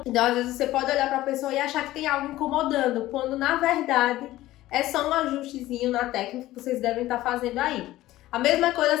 Então, às vezes você pode olhar para a pessoa e achar que tem algo incomodando, quando na verdade é só um ajustezinho na técnica que vocês devem estar fazendo aí. A mesma coisa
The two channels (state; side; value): quieter; right; 15.9 dB